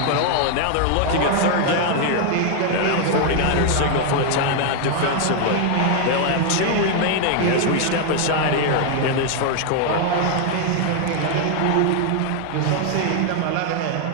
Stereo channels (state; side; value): different; both; correlation 0.00